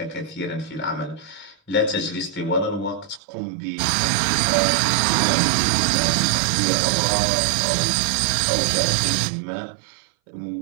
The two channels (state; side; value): drops out; left; at 3.2 s